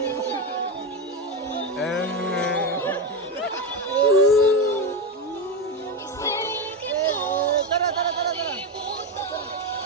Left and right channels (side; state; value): both; normal; correlation 0.14